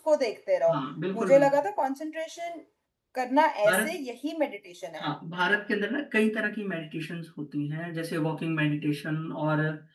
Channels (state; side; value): identical; both; correlation 1.00